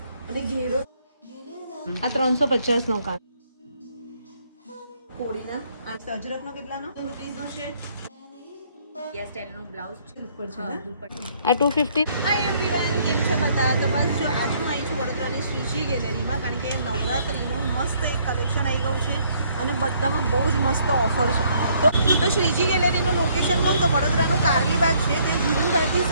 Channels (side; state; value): both; inverted; correlation -0.65